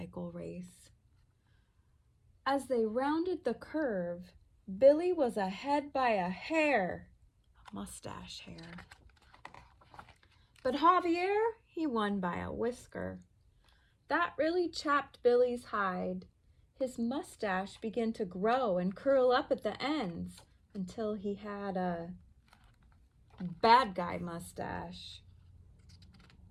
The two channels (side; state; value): both; identical; correlation 1.00